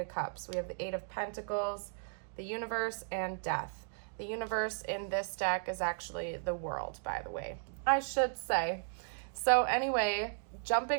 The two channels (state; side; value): silent; left; digital silence